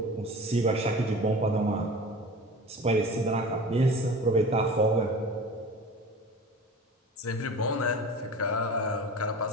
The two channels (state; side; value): normal; both; correlation 0.38